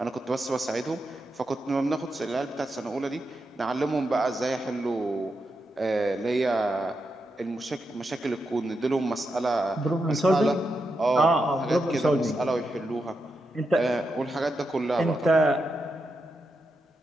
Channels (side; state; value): both; normal; correlation 0.86